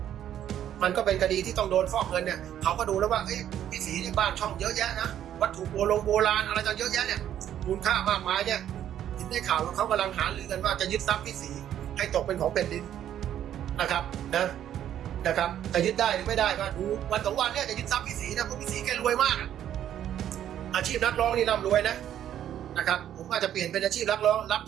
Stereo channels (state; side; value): quieter; left; 10.7 dB